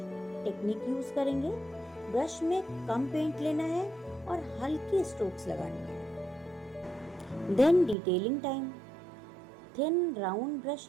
टेक्निक यूज करेंगे, ब्रश में कम पेंट लेना है और हल्की स्ट्रोक्स लगानी है। Then detailing time. Thin round brush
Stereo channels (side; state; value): left; drops out; at 8.0 s